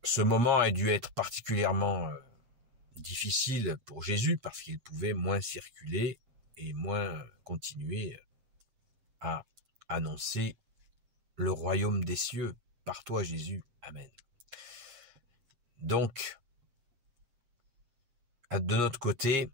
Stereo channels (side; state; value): left; late; 7.5 ms